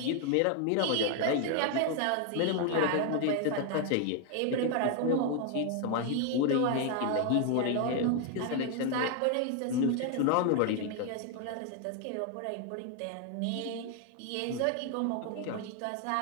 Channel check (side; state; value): both; different; correlation 0.01